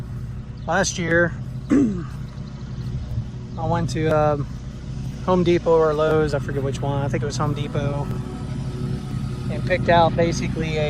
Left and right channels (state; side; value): identical; both; correlation 1.00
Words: last year I went to Home Depot or Lowe's, I forget which one, I think it was Home Depot, and picked out